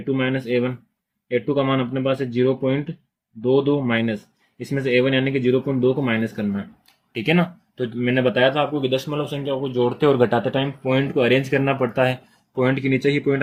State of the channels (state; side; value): identical; both; correlation 1.00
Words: - A1। A2 का मान अपने पास है 0.22 माइनस इसमें से A1 यानी कि 0.2 को माइनस करना है। ठीक है ना। तो मैंने बताया था आपको कि दशमलव संख्या को जोड़ते और घटाते टाइम पॉइंट को अरेंज करना पड़ता है, पॉइंट के नीचे ही पॉइंट